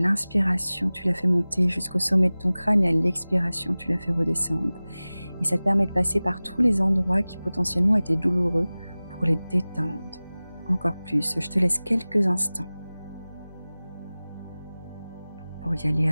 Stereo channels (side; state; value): both; inverted; correlation -0.98